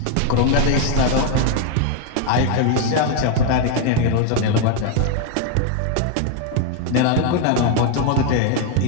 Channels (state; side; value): different; both; correlation 0.00